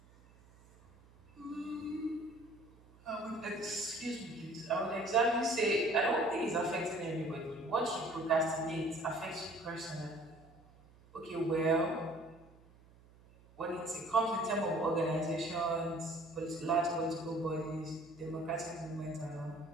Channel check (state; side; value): noise; right; hum, 25 dB below the sound